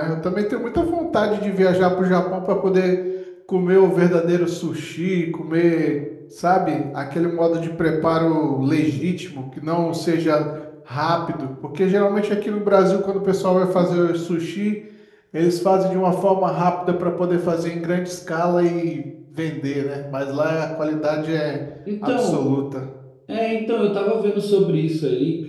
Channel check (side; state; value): both; identical; correlation 1.00